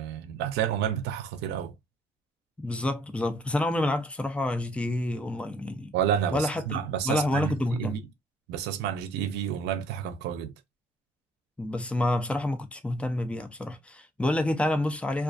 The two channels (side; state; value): both; normal; correlation 0.62